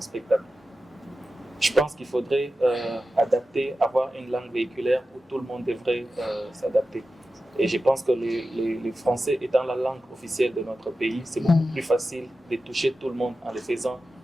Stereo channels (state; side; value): normal; both; correlation 0.93